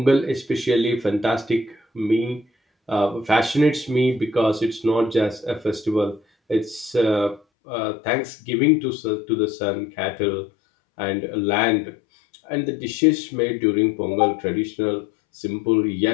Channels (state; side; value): drops out; right; at 7.4 s